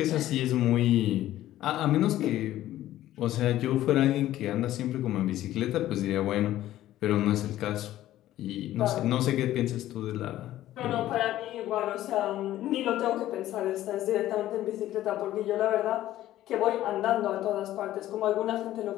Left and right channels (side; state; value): right; quieter; 13.9 dB